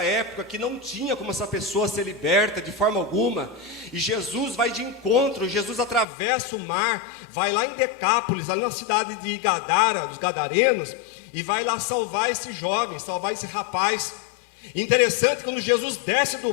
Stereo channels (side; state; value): right; drops out; at 6.1 s